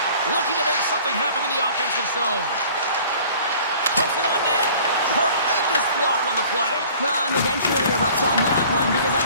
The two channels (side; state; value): both; inverted; correlation -0.49